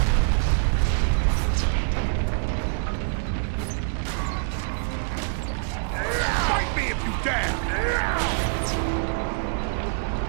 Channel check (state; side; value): silent; left; digital silence